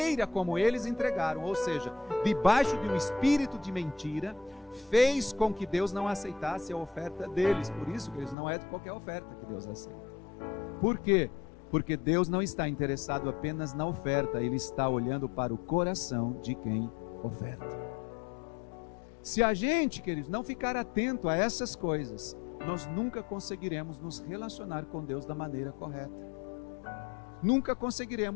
como eles entregaram, ou seja, debaixo de um espírito de mentira, fez com que Deus não aceitasse a oferta deles. Por isso que eles não é de qualquer oferta que Deus aceita. Por quê? Porque Deus não está interessado apenas na oferta, Ele está olhando para o coração de quem oferta. Se a gente, queridos, não ficar atento a essas coisas, nós nunca conseguiremos nos relacionar com Deus da maneira correta. Nunca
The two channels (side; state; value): right; drops out; at 8.3 s